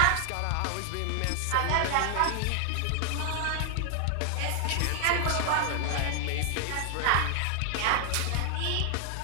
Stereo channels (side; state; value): both; different; correlation 0.00